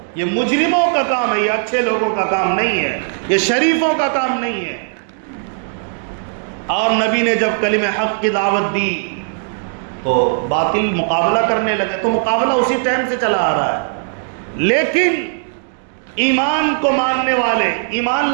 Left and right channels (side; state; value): left; silent; digital silence